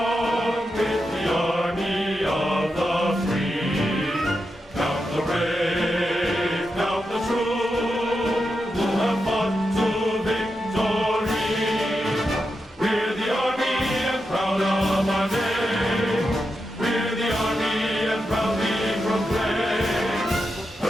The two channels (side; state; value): both; normal; correlation 0.87